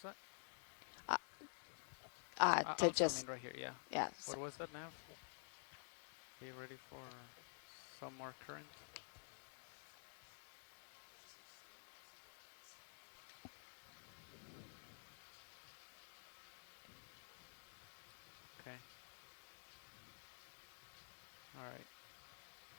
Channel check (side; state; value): right; silent; digital silence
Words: that? To just, I mean right here, yeah. yeah. What was that, Nav? Be ready for some more current. Okay. All right.